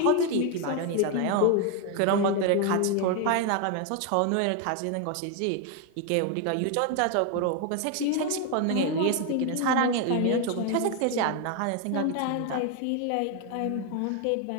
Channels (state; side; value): different; both; correlation 0.01